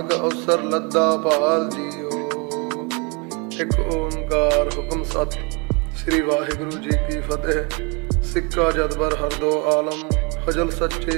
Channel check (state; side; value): quieter; left; 31.8 dB